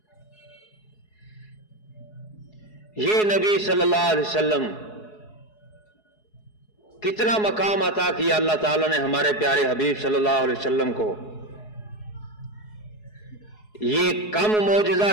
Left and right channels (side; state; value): right; late; 4.7 ms